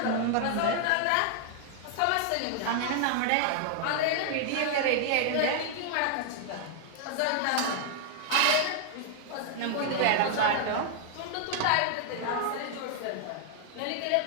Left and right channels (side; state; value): both; different; correlation -0.01